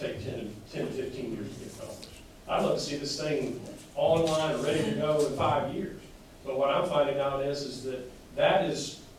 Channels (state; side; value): identical; both; correlation 1.00